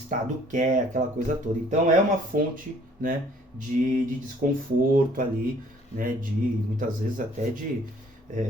quer, aquela coisa toda. Então é uma fonte, né, de desconforto ali, né, de muitas vezes até de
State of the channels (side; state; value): both; normal; correlation 0.58